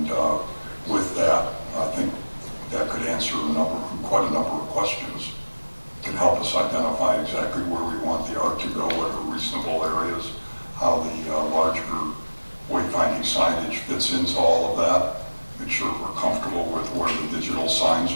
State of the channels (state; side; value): inverted; both; correlation -1.00